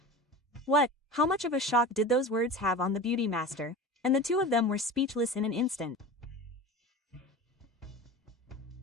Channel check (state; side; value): normal; both; correlation 0.32